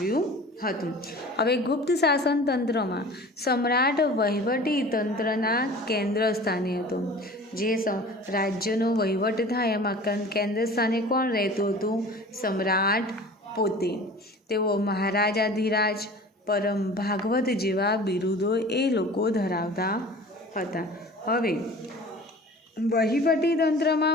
હતું. હવે ગુપ્ત શાસનતંત્રમાં સમ્રાટ વહીવટી તંત્રના કેન્દ્ર સ્થાને હતો. જે રાજ્યનો વહીવટ થાય એમાં કેન્દ્ર સ્થાને કોણ રહેતું હતું? સમ્રાટ પોતે. તેઓ મહારાજાધિરાજ, પરમ ભાગવત જેવા બિરુદો એ લોકો ધરાવતા હતા. હવે વહીવટી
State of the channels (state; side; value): normal; both; correlation 0.42